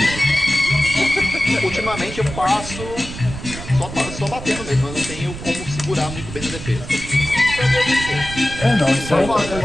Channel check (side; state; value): right; noise; rumble, 10 dB below the sound